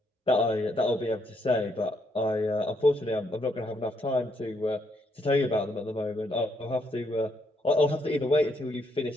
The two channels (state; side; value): normal; both; correlation 0.74